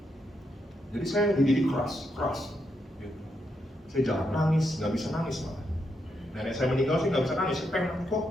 Jadi saya dididik keras. Gitu. Saya jarang nangis, nggak bisa nangis malah. Nenek saya meninggal sih nggak bisa nangis, saya pengen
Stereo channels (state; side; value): normal; both; correlation 0.81